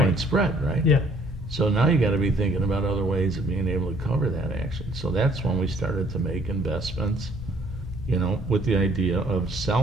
spread, right? Yeah. So now you got to be thinking about other ways of being able to cover that action. So that's when we started to make investments, you know, with the idea of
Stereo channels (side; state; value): both; normal; correlation 0.61